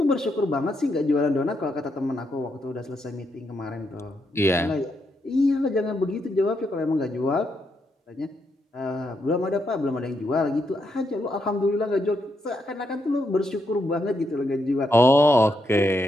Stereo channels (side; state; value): both; normal; correlation 0.80